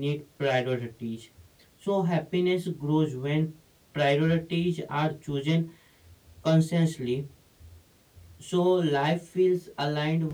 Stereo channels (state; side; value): identical; both; correlation 1.00